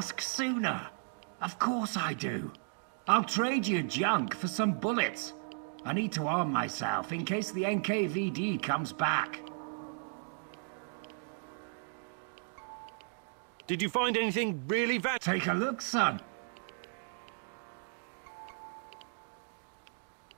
sooner? Of course I do. I'll trade you junk for some bullets. I need to arm myself in case the NKVD comes back. Did you find anything really Take a look, son.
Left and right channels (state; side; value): silent; left; 54 dB below the other